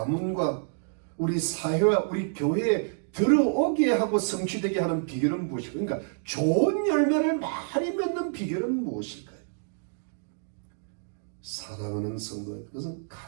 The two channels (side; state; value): left; silent; digital silence